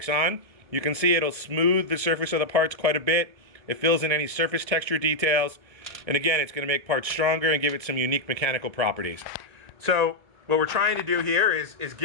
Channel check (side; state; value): left; late; 1.6 ms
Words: on. You can see it'll smooth the surface of the parts quite a bit. It fills in any surface texture details, and again, it's going to make parts stronger and give it some unique mechanical properties. So what we're trying to do here is